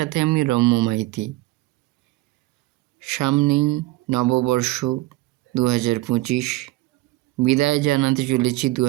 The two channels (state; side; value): quieter; left; 19.2 dB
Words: আমি রম্য মাইতি। সামনেই নববর্ষ 2025, বিদায় জানাতে চলেছি